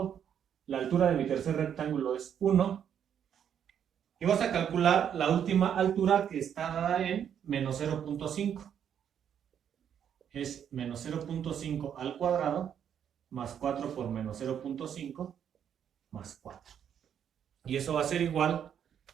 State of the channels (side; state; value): left; quieter; 8.8 dB